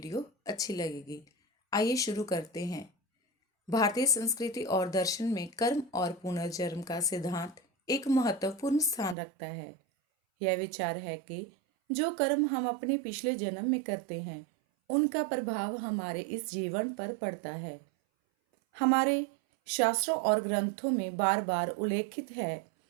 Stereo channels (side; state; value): left; drops out; at 9.2 s